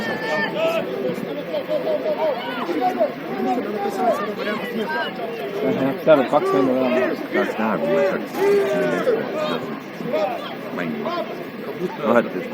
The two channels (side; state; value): both; identical; correlation 1.00